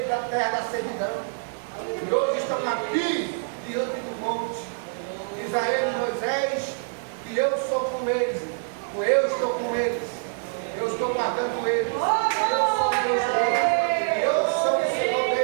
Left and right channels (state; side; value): silent; left; digital silence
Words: da terra da servidão. E hoje estão aqui diante do monte. Diz a eles, Moisés, que eu sou com eles, eu estou com eles, eu estou guardando eles, eu sou Deus deles, eu sou o Senhor